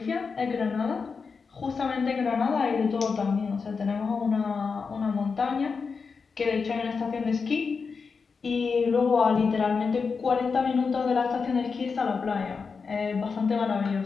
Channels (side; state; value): right; quieter; 5.1 dB